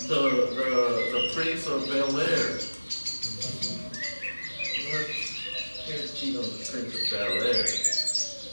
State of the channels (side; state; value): both; inverted; correlation -1.00